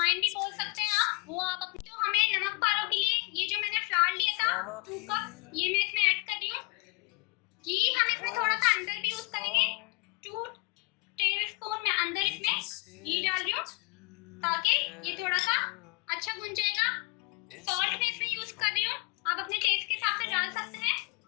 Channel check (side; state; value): right; quieter; 28.3 dB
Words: अजवाइन भी बोल सकते हैं आप, वो आप अपने। तो हमें नमक पारों के लिए ये जो मैंने फ्लावर लिया था 2 कप, ये मैं इसमें ऐड कर रही हूँ। घी हम इसमें थोड़ा सा अंदर भी यूज करेंगे, 2 टेबलस्पून में अंदर इसमें घी डाल रही हूँ ताकि ये थोड़ा सा अच्छा भुन जाएगा। सॉल्ट मैं इसमें यूज कर रही हूँ, आप अपने टेस्ट के हिसाब से डाल सकते हैं।